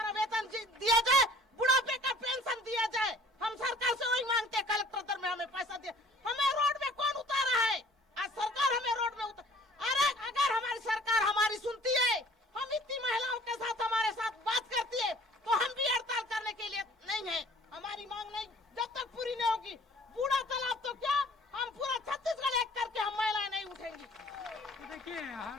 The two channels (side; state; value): both; normal; correlation 0.52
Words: वेतन दिया जाए, बुढ़ापे का पेंशन दिया जाए। हम सरकार से वही मांगते हैं, कलेक्टर दर में हमें पैसा दिया। हमें रोड में कौन उतारा है? आज सरकार हमें रोड में अरे अगर हमारी सरकार हमारी सुनती है, हम इतनी महिलाओं के साथ हमारे साथ बात करती है, तो हम भी हड़ताल करने के लिए नहीं है। हमारी मांग नहीं जब तक पूरी नहीं होगी, बूढ़ा तालाब तो क्या, हम पूरा छत्तीसगढ़ एक करके हम महिलाएं नहीं उठेंगी। तो देखिए